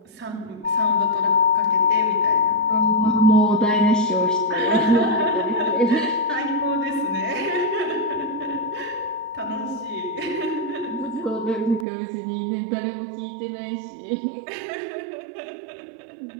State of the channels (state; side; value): drops out; left; at 11.9 s